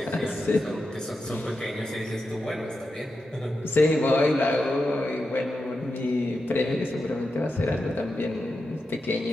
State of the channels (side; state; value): both; normal; correlation 0.89